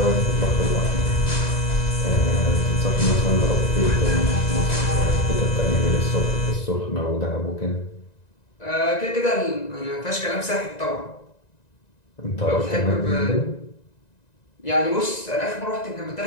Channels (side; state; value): right; late; 1.9 ms